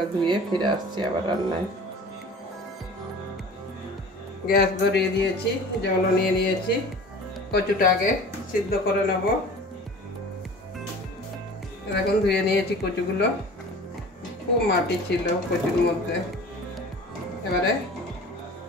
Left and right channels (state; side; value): normal; both; correlation 0.42